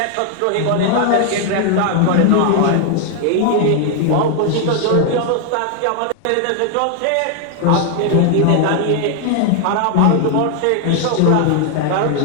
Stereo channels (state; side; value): different; both; correlation 0.00